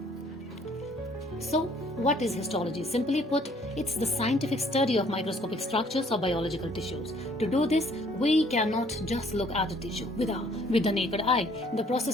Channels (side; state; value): both; normal; correlation 0.61